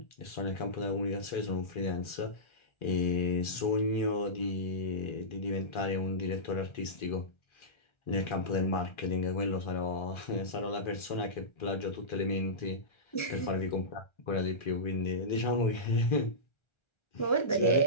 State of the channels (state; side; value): late; right; 1.4 ms